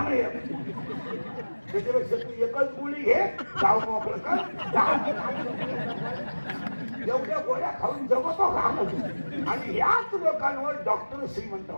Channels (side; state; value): both; inverted; correlation -1.00